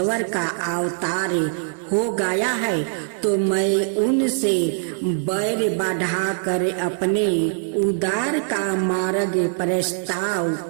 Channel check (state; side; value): silent; left; 60 dB below the other